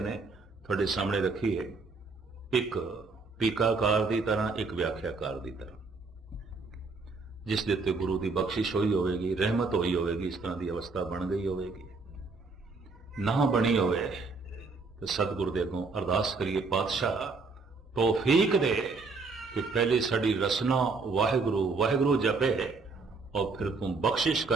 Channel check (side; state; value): left; quieter; 4.1 dB